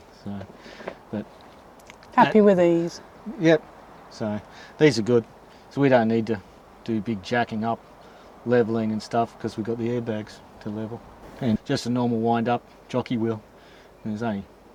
So, but happy with these. Yep. So these are good. So we don't need to do big jacking up, leveling and stuff, because we've got the airbags to level. And just a normal wind up jockey wheel. And there's only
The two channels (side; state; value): both; identical; correlation 1.00